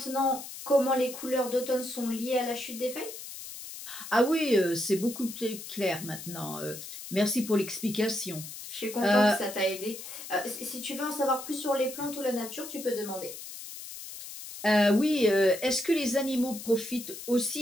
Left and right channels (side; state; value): left; noise; hiss, 11 dB below the sound